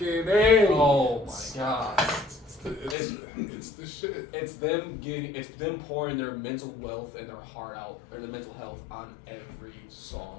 Oh my god. It's the shit. It's them pouring their mental wealth and their heart out, or their mental health on every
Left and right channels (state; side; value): drops out; right; at 3.0 s